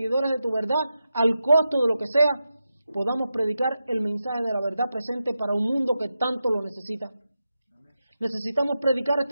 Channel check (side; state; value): both; inverted; correlation -0.89